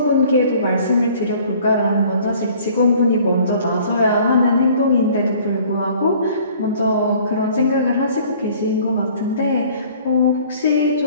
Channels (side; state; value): both; inverted; correlation -0.53